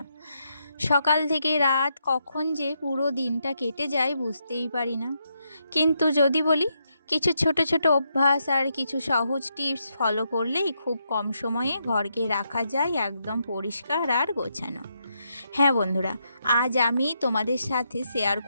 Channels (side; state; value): both; inverted; correlation -0.80